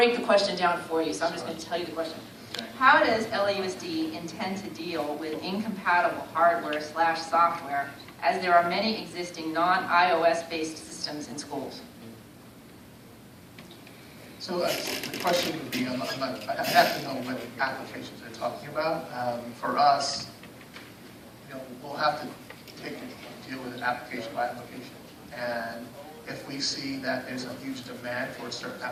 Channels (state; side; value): identical; both; correlation 1.00